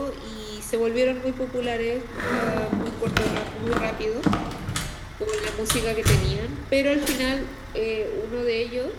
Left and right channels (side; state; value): both; identical; correlation 1.00